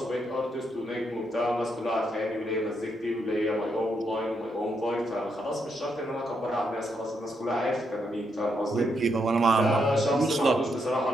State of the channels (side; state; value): both; normal; correlation 0.79